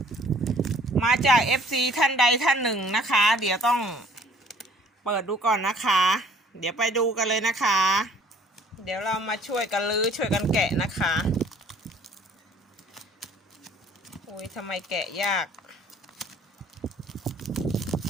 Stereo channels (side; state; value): both; normal; correlation 0.56